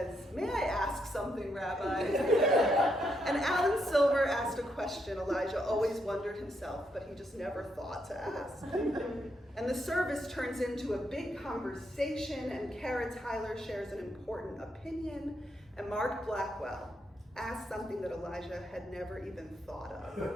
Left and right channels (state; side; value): normal; both; correlation 0.78